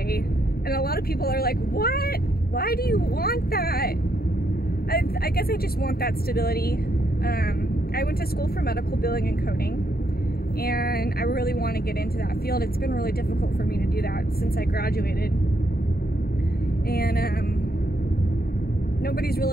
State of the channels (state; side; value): late; right; 0.45 ms